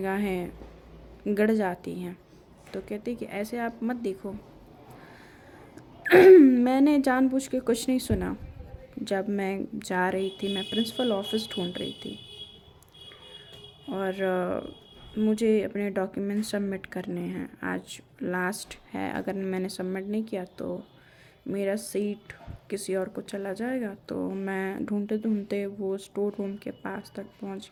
गड़ जाती हैं। तो कहती कि ऐसे आप मत देखो। मैंने जानबूझ के कुछ नहीं सुना। जब मैं जा रही थी, मैं प्रिंसिपल ऑफिस ढूंढ रही थी और मुझे अपने डॉक्यूमेंट सबमिट करने हैं। आज लास्ट है, अगर मैंने सबमिट नहीं किया तो मेरा सीट किसी और को चला जाएगा। तो मैं ढूंढते ढूंढते वो स्टोर रूम के पास तक पहुंच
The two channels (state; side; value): identical; both; correlation 1.00